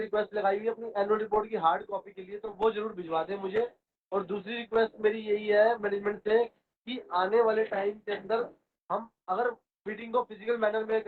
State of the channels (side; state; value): both; identical; correlation 1.00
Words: लगाई हुई है अपनी एनुअल रिपोर्ट की हार्ड कॉपी के लिए, तो वो ज़रूर भिजवा दें मुझे. और दूसरी रिक्वेस्ट मेरी यही है मैनेजमेंट से कि आने वाले टाइम के अंदर हम अगर मीटिंग को फिजिकल मैनर में